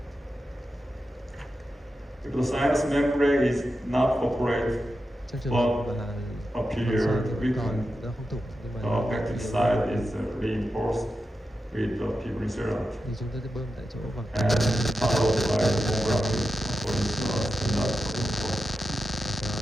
If the sinus membrane is not operated but appear weakened, the affected side is reinforced with the fibrin sealant and followed by the bone grafting according to the standard protocol.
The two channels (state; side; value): normal; both; correlation 0.90